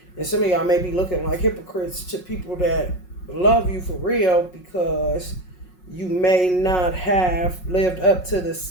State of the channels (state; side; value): late; right; 5.5 ms